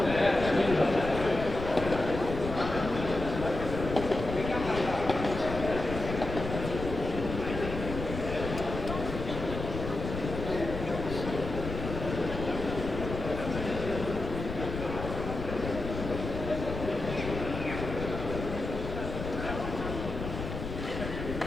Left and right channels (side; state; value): left; noise; rumble, 6 dB below the sound